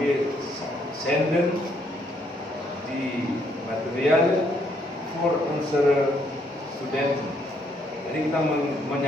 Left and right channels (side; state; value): both; normal; correlation 0.71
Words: send di material for answer student. Jadi kita